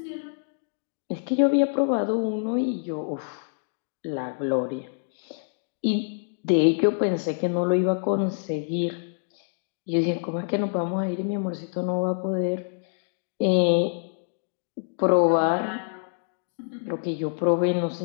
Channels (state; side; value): silent; right; digital silence